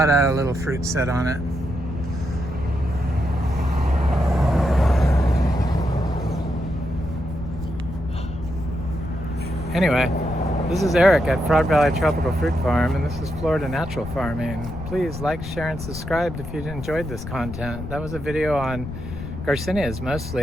of little fruit set on it. Anyway, this is Eric at Frog Valley Tropical Fruit Farm, and this is Florida Natural Farming. Please like, share, and subscribe if you enjoyed this content. That was a video on Garcinias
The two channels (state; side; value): noise; left; rumble, 9 dB below the sound